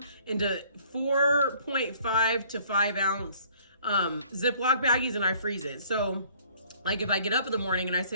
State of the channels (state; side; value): inverted; both; correlation -0.56